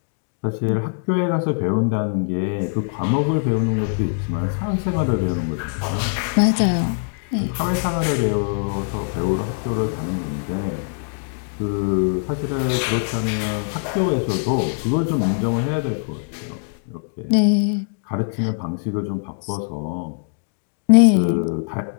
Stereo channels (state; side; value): silent; right; digital silence